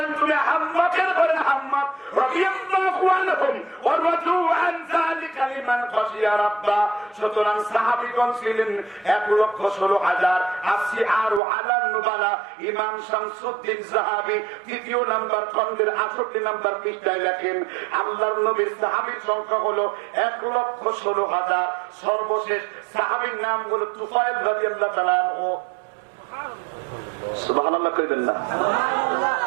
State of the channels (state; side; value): drops out; left; at 11.4 s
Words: তুমি হাম্মাকের ঘরে হাম্মাক রাদিয়াল্লাহু আনহুম ওয়া রাদু আন যালিকা লিমান খাশিয়া রাব্বা। সুতরাং সাহাবীগণ ছিলেন 1,16,000। আসি আরো আলান নুবালা। ইমাম শামসুদ্দিন যাহাবী 3য় নাম্বার খণ্ডের 68 নাম্বার পৃষ্ঠায় লেখেন আল্লাহর নবীর সাহাবীর সংখ্যা হলো 1,16,000। সর্বশেষ সাহাবীর নাম হলো তুফাইল রাদিয়াল্লাহু তাআলা আনহু। সুবহানাল্লাহ কইবেন না?